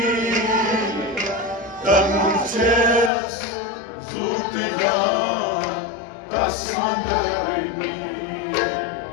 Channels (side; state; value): right; drops out; at 3.1 s